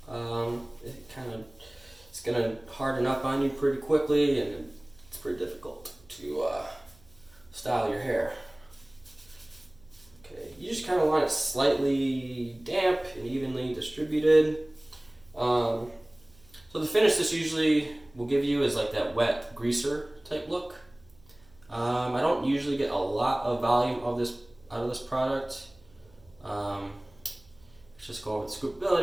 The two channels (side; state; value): right; noise; hum, 28 dB below the sound